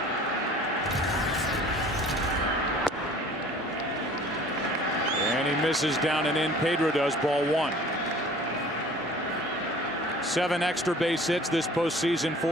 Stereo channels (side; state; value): both; normal; correlation 0.48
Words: And he misses down and in. Pedro does. Ball 1. 7 extra base hits this postseason